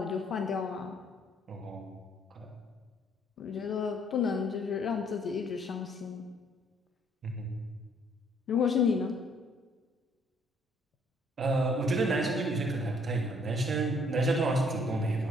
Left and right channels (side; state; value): both; normal; correlation 0.64